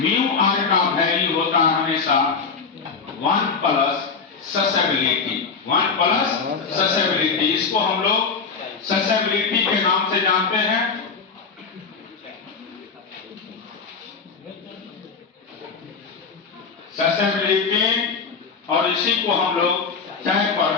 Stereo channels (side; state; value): right; quieter; 5.2 dB